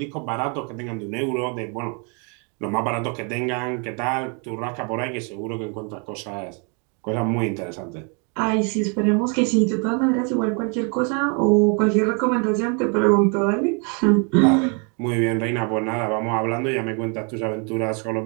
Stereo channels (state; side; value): quieter; left; 36.2 dB